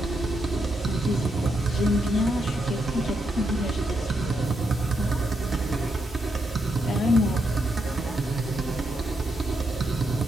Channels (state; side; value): normal; both; correlation 0.81